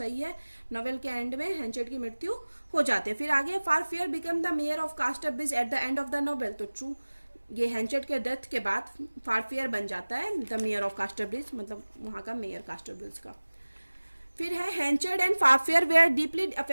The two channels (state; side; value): inverted; both; correlation -1.00